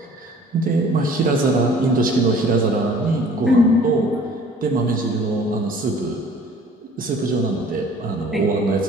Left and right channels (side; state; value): both; normal; correlation 0.51